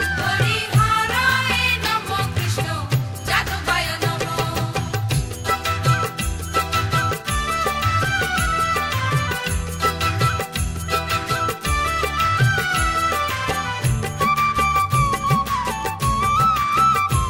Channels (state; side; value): identical; both; correlation 1.00